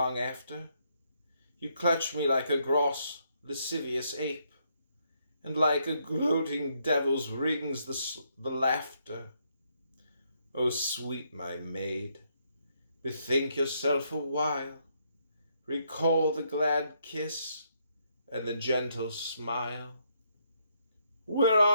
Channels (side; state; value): both; inverted; correlation -0.74